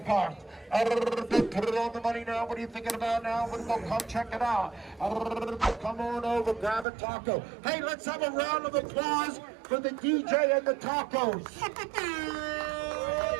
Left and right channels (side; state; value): left; drops out; at 6.9 s